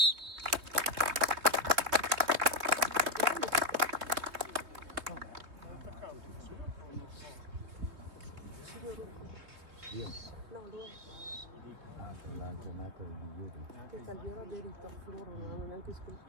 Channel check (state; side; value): late; left; 3.2 ms